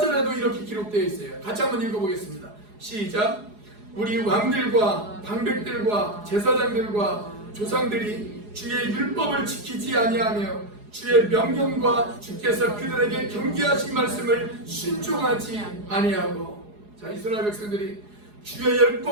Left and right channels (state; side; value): late; left; 4.8 ms